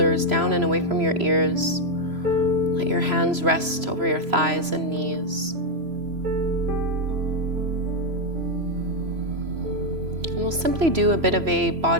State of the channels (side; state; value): left; late; 3.0 ms